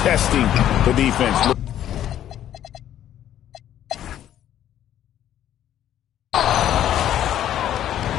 testing the defense.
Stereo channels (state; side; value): quieter; right; 11.3 dB